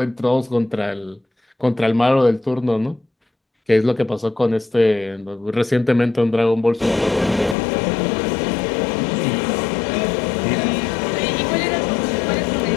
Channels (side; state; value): right; drops out; at 7.6 s